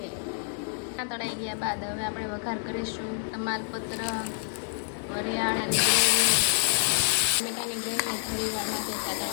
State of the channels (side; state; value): right; silent; digital silence